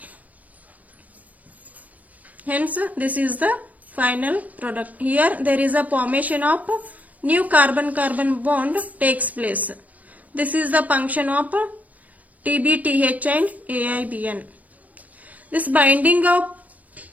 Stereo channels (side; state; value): left; late; 0.076 ms